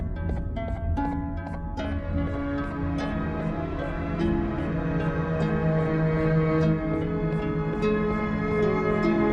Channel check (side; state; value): both; identical; correlation 1.00